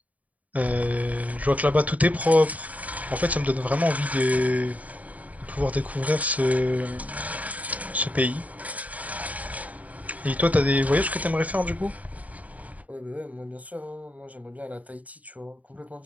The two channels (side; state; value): left; late; 0.072 ms